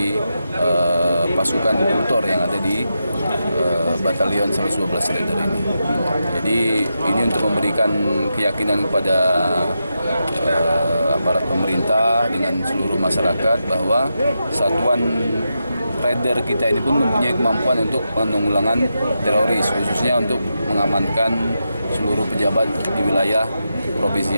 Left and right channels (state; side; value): inverted; both; correlation -0.87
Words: pasukan kultur yang ada di Batalion 112 Raider ini. Jadi ini untuk memberikan keyakinan kepada aparat pemerintah dengan seluruh masyarakat bahwa Satuan Raider kita ini pun mempunyai kemampuan untuk penanggulangan teroris, khususnya untuk mengamankan seluruh pejabat di wilayah Provinsi